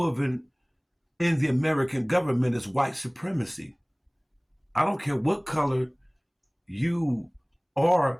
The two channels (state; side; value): identical; both; correlation 1.00